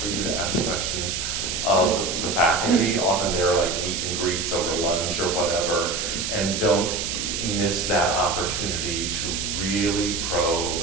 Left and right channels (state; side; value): noise; right; hiss, 2 dB below the sound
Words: for you to ask questions of the faculty. Often they're like meet and greets over lunch or whatever, and don't miss that opportunity to really